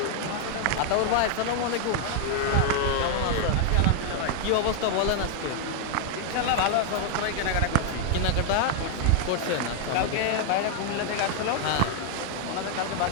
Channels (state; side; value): different; both; correlation 0.00